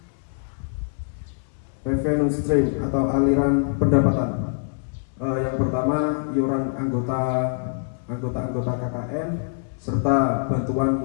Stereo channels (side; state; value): right; silent; digital silence